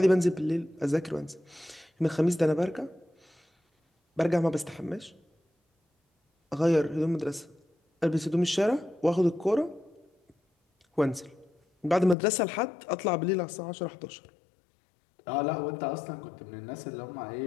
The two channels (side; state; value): right; drops out; at 12.2 s